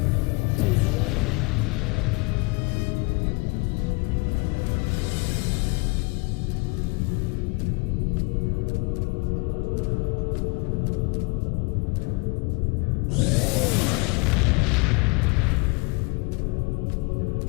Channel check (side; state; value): right; quieter; 28.9 dB